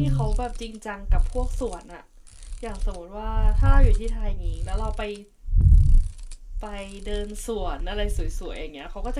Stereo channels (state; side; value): identical; both; correlation 1.00